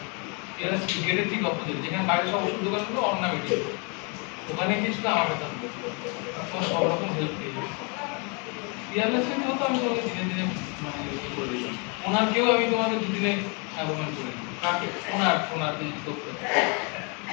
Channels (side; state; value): right; quieter; 34.0 dB